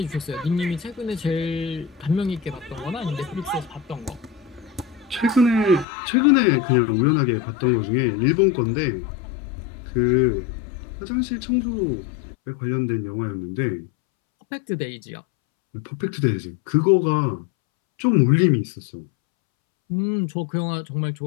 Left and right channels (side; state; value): right; drops out; at 5.9 s